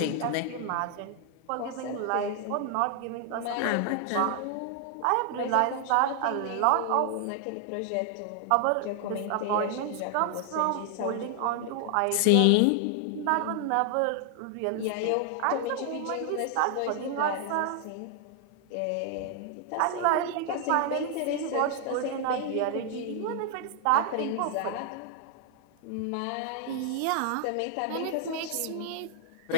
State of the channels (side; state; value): both; different; correlation 0.00